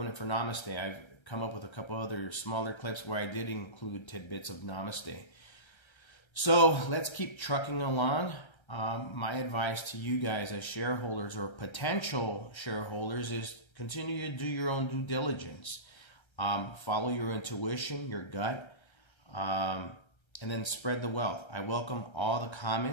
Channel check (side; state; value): right; late; 1.3 ms